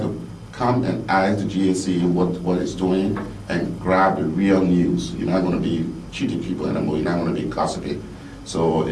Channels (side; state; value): both; identical; correlation 1.00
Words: to come and ask the GSC what it's doing and grab the real news. You're not going to be cheating people anymore. You're not going to be gossiping. So